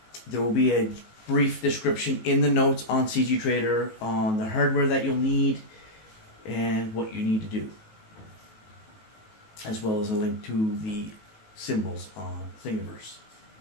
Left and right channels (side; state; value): right; late; 18 ms